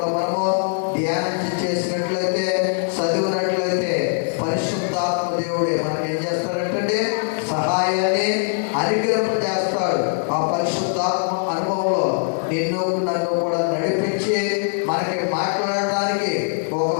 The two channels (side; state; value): right; silent; 65 dB below the other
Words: మనము ధ్యానం చేసినట్లయితే, చదివినట్లయితే పరిశుద్ధాత్మ దేవుడే మనకి ఏం చేస్తాడంటే సహాయాన్ని అనుగ్రహింపజేస్తాడు. ఆ పరిశుద్ధాత్మ అనుభవంలో నిన్ను నన్ను కూడా నడిపించి మనకి మాట్లాడడానికి